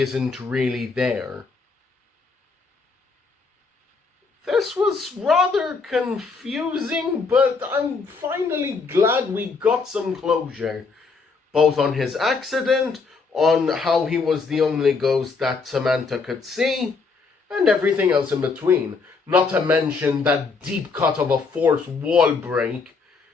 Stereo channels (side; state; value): right; quieter; 4.6 dB